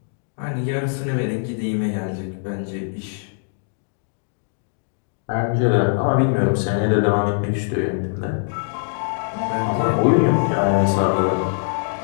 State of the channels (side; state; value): right; silent; 60 dB below the other